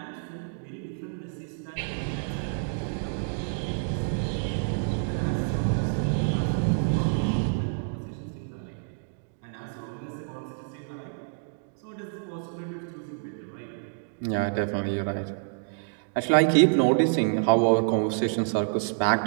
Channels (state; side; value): silent; left; digital silence